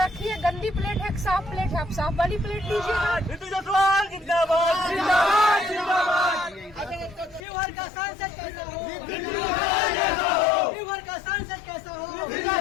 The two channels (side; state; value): right; drops out; at 7.4 s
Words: है, गंदी प्लेट है, एक साफ प्लेट है, आप साफ वाली प्लेट लीजिएगा। रितु जायसवाल जिंदाबाद जिंदाबाद जिंदाबाद। शिवहर का सांसद कैसा हो, शिवहर का सांसद कैसा हो,